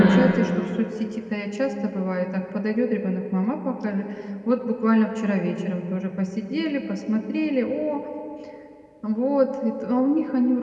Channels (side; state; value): both; identical; correlation 1.00